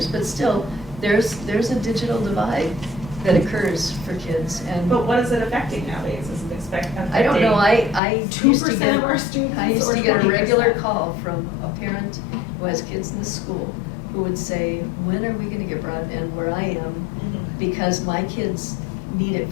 but still, there's a digital divide that occurs for kids, and But what is it affecting nowadays? Is it affecting? I don't know, I used to 2% get, of our students I used or to get a 20%? regular call from a parent who has kids in the school, who would say, when are we gonna get broadband where I am? Because my kids need it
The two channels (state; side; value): drops out; right; at 8.0 s